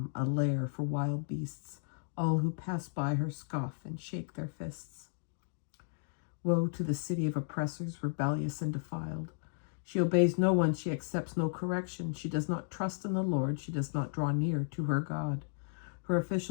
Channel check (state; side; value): silent; right; digital silence